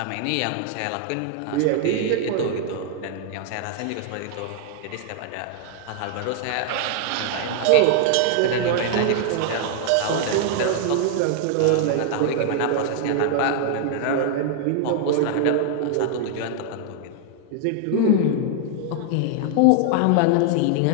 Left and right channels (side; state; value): both; different; correlation 0.00